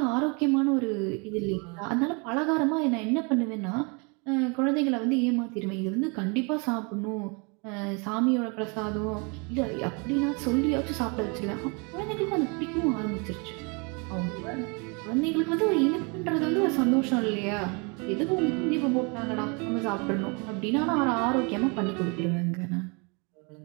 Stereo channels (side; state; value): left; quieter; 32.2 dB